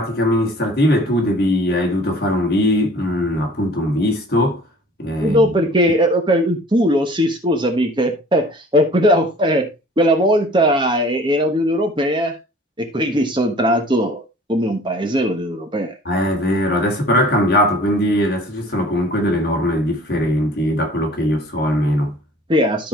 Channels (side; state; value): both; normal; correlation 0.49